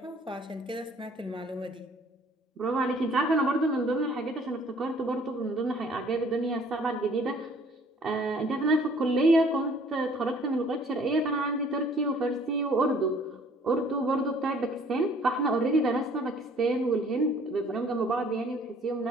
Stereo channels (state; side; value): normal; both; correlation 0.57